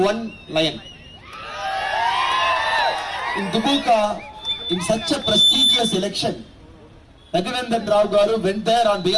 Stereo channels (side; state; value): both; identical; correlation 1.00